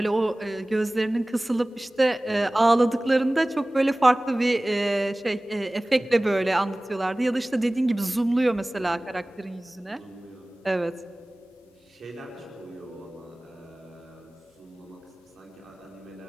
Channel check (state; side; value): normal; both; correlation 0.98